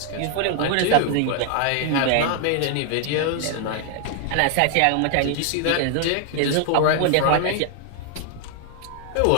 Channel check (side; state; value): both; different; correlation 0.00